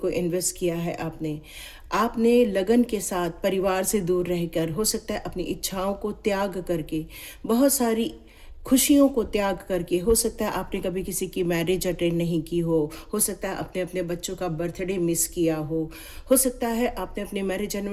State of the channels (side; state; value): both; identical; correlation 1.00